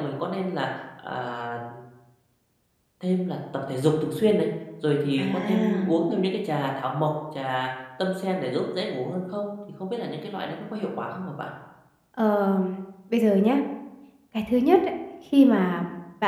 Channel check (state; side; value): identical; both; correlation 1.00